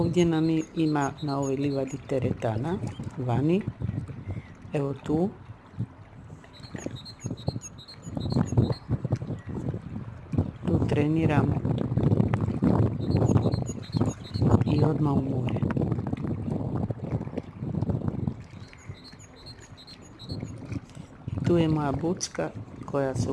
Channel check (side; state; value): both; identical; correlation 1.00